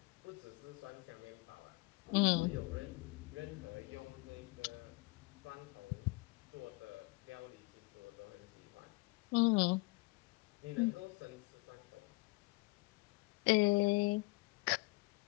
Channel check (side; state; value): right; quieter; 24.6 dB